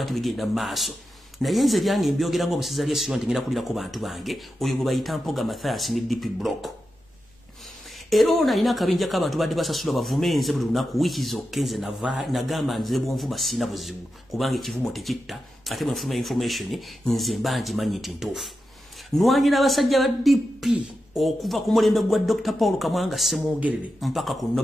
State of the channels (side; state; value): both; normal; correlation 0.90